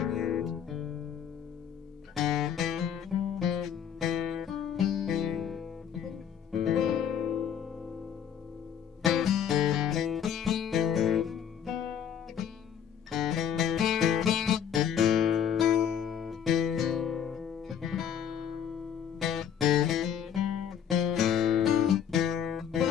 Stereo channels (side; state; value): right; quieter; 8.6 dB